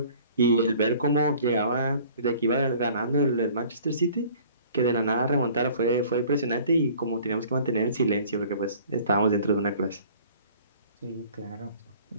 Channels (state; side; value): inverted; both; correlation -0.51